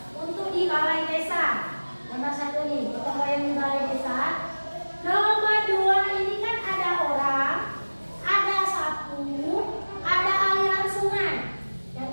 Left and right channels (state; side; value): inverted; both; correlation -1.00